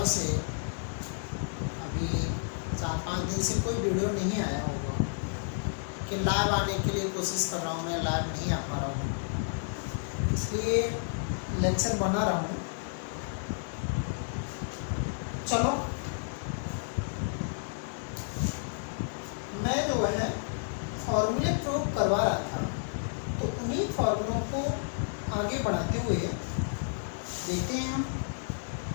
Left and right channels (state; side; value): silent; right; digital silence